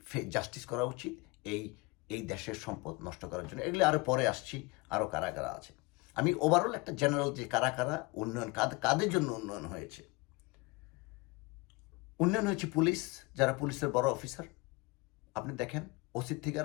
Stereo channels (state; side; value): quieter; right; 24.8 dB